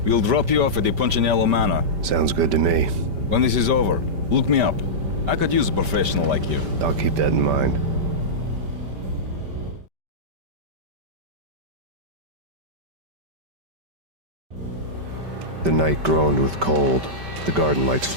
We'll drop you off at the Punchinello Manor. Sounds good to me. When this is over, look me up. I could use a professional like you. I'll keep that in mind. The night groaned with cold. The garden lights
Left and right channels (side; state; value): left; late; 5.1 ms